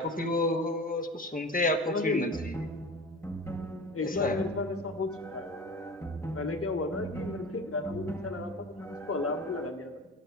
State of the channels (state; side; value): normal; both; correlation 0.35